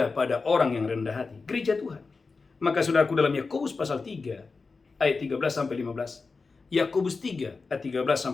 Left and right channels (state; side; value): quieter; right; 4.3 dB